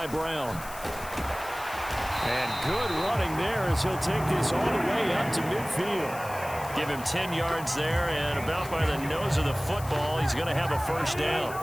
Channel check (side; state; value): left; noise; hiss, 15 dB below the sound